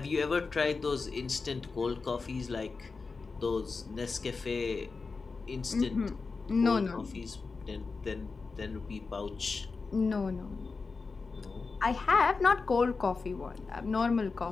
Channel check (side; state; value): right; quieter; 4.4 dB